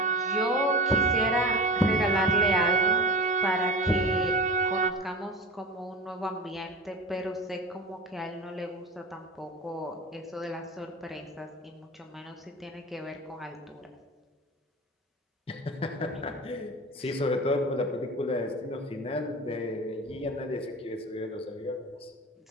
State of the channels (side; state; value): both; normal; correlation 0.31